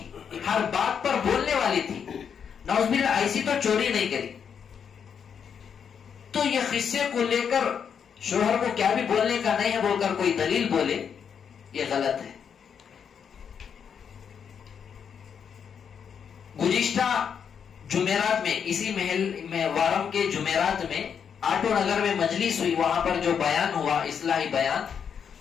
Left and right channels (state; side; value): quieter; right; 7.3 dB